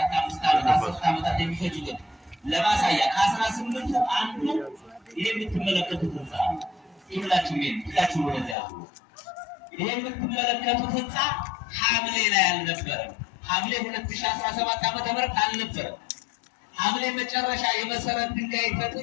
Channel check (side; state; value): right; drops out; at 8.6 s